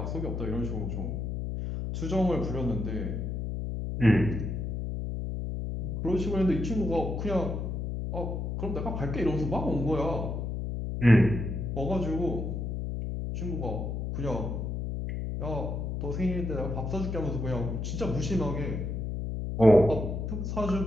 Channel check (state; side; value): noise; left; hum, 3 dB below the sound